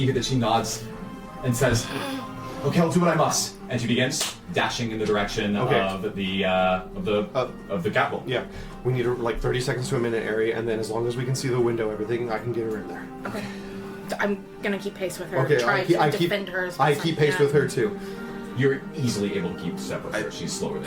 that she nods and says, "Okay, I'll do what I must." And she begins dashing in the direction Okay. of the capital. Yeah, we need like 30 seconds to a minute area, and then as long as we can see the window, everything, I can get her in there. Okay. So I'm gonna keep pace with her. Okay, try to defend her as I best keep can. pace with her too. You're easily able to keep step with her. She's slower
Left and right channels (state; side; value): identical; both; correlation 1.00